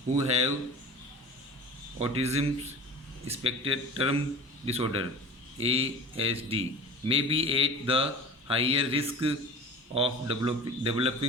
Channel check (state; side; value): normal; both; correlation 0.38